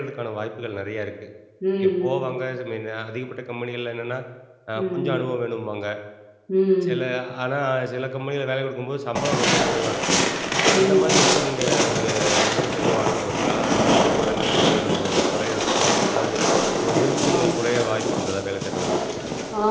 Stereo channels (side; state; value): both; identical; correlation 1.00